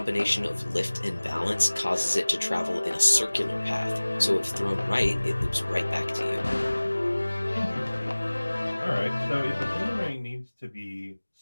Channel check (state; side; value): inverted; both; correlation -1.00